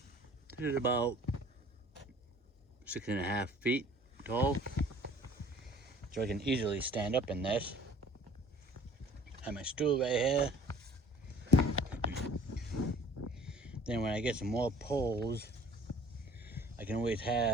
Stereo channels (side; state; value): both; normal; correlation 0.51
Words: It is about 6.5 feet tall, so I can easily stand up in this. I have my stool right here. Then when I get some more poles, I can always